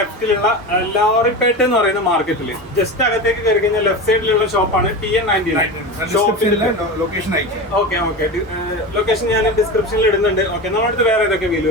ലോറിപ്പേട്ട എന്ന് പറയുന്ന മാർക്കറ്റിൽ ജസ്റ്റ് അകത്തേക്ക് കയറി കഴിഞ്ഞാൽ ലെഫ്റ്റ് സൈഡിലുള്ള ഷോപ്പാണ് TN99. ലൊക്കേഷൻ അയക്കാം. ഓക്കെ ഓക്കെ, ലൊക്കേഷൻ ഞാൻ ഡിസ്ക്രിപ്ഷനിൽ ഇടുന്നുണ്ട്. ഓക്കെ, നമ്മുടെ അടുത്ത് വേറെ ഏതൊക്കെ വീല്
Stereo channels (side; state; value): both; normal; correlation 0.25